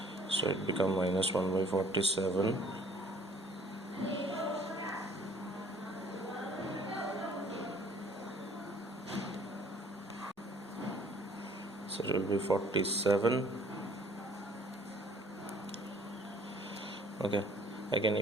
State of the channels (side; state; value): both; normal; correlation 0.57